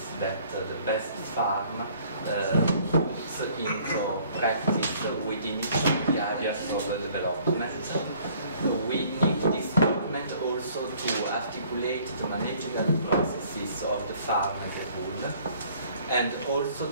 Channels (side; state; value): both; inverted; correlation -0.58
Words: that the best farm puts into practice within each of the areas of development. We need this document also to articulate the managerial processes of the farm as a whole, and also